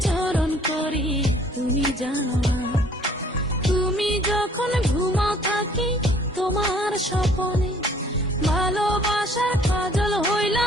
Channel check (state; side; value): normal; both; correlation 0.58